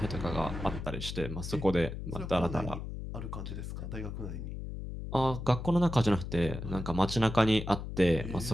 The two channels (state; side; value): noise; left; hum, 7 dB below the sound